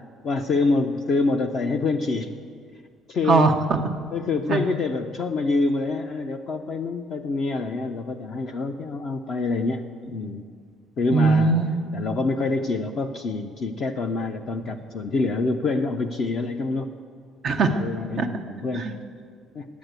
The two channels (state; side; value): normal; both; correlation 0.66